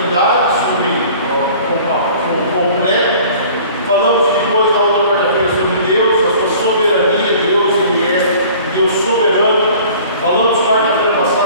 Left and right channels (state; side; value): inverted; both; correlation -0.48